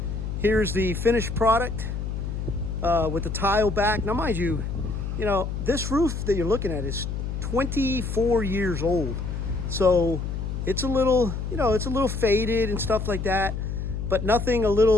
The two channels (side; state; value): left; noise; hum, 4 dB below the sound